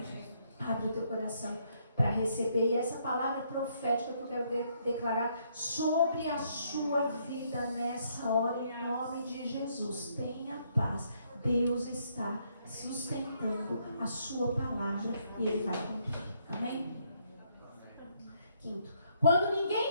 Abre o teu coração para receber. E essa palavra profética que eu quero declarar sobre a sua vida nessa hora, em nome de Jesus. Tenha paz. Deus está sustentando a sua palavra e Ele vai cumprir. Amém? Quinto, quando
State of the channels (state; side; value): inverted; both; correlation -0.71